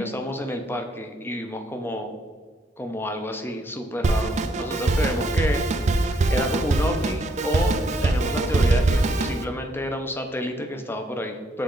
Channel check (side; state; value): both; normal; correlation 0.72